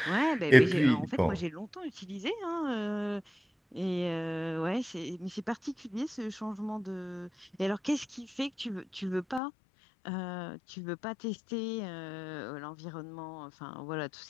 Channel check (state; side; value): drops out; right; at 9.4 s